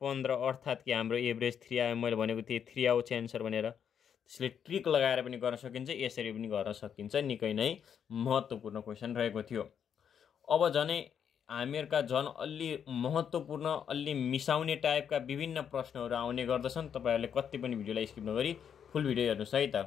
15 अर्थात् कि हाम्रो एभरेज 3 आयो। मैले भनेको थिएँ 3 आउँछ एन्सर भनेर। त्यसले ट्रिक लगाएर पनि गर्न सकिन्छ, यसरी पनि गर्न सकिन्छ। निकै नै महत्त्वपूर्ण क्वेसन रहेको थियो। अब झनै हामीहरुका झन् अलि महत्त्वपूर्ण अलि मिसाउने टाइपका विभिन्न प्रश्नहरू आउने गर्दछन्। तपाईहरुले कति पनि भिडियोलाई स्किप नगरी फुल भिडियो हेर्नुस् है त।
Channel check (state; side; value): quieter; right; 8.1 dB